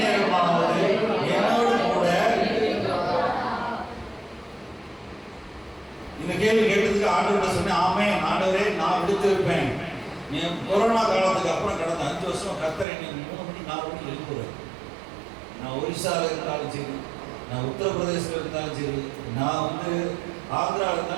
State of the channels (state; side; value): drops out; left; at 12.9 s